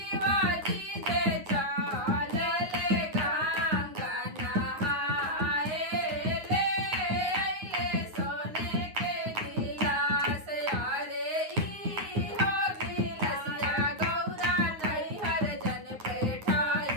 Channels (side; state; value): left; late; 9.6 ms